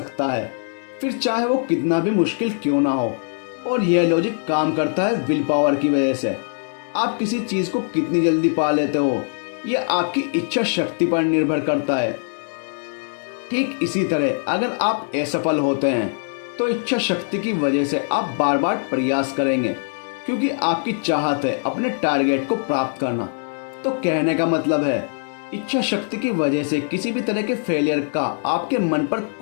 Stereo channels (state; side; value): silent; right; 64 dB below the other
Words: है, फिर चाहे वो कितना भी मुश्किल क्यों ना हो। और यह लॉजिक काम करता है विल पावर की वजह से। आप किसी चीज को कितनी जल्दी पा लेते हो यह आपकी इच्छा शक्ति पर निर्भर करता है। ठीक इसी तरह अगर आप असफल होते हैं तो इच्छा शक्ति की वजह से आप बार बार प्रयास करेंगे, क्योंकि आपकी चाहत है अपने टारगेट को प्राप्त करना। तो कहने का मतलब है इच्छा शक्ति की वजह से किसी भी तरह के फेलियर का आपके मन पर